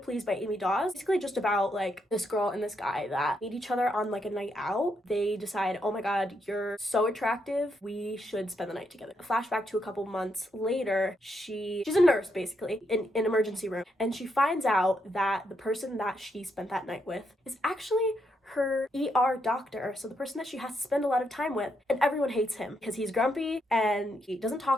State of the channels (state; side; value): normal; both; correlation 0.79